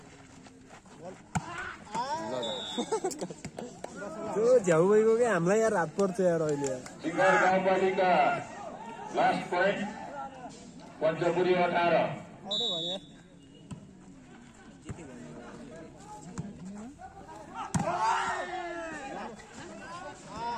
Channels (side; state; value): both; identical; correlation 1.00